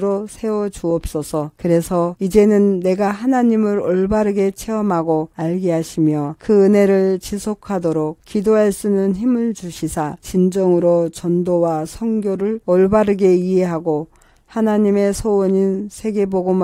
세워 주옵소서. 그래서 이제는 내가 하나님을 올바르게 체험하고 알게 하시며 그 은혜를 지속하도록 기도할 수 있는 힘을 주시사 진정으로 전도와 선교를 올바르게 이해하고 하나님의 소원인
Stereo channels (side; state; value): both; identical; correlation 1.00